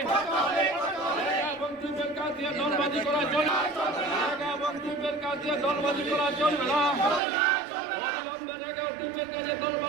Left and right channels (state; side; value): drops out; left; at 7.2 s